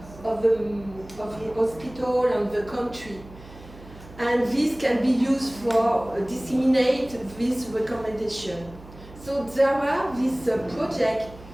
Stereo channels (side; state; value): right; noise; hum, 19 dB below the sound